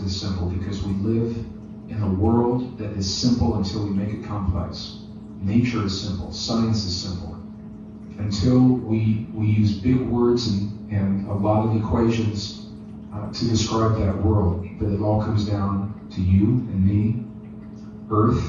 simple, because we live in a world that is simple until we make it complex. Nature is simple. Science is simple. Until we use big words and a lot of equations to describe that world. But it all comes down to you and me,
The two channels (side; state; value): both; identical; correlation 1.00